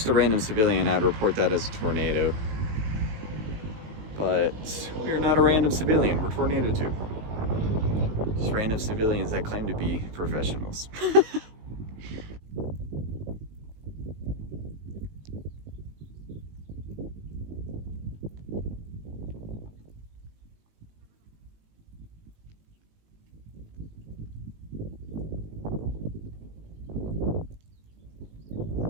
a random civilian, I'd report that as a tornado. But we're not a random civilian, we're Tornado Tube. Just random civilians that claim to be professionals.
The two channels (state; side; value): late; left; 19 ms